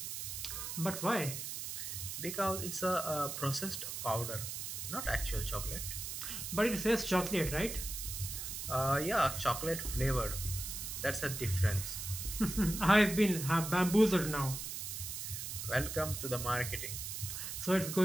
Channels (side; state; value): right; noise; hiss, 5 dB below the sound